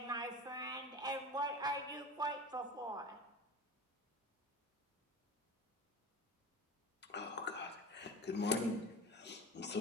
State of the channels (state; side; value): normal; both; correlation 0.34